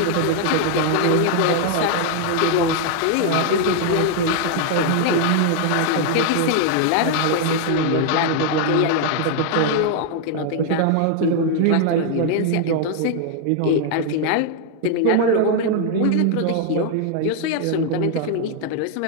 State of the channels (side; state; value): both; different; correlation 0.00